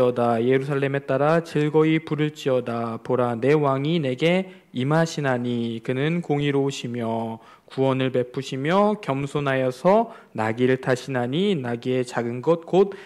예루살렘에 따라 즐거이 부를지어다. 보라, 내 왕이 내게 임하시나니 그는 공의로우시며 구원을 베푸시며 겸손하여서 나귀를 타시나니 나귀의 작은 것 곧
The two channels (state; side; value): identical; both; correlation 1.00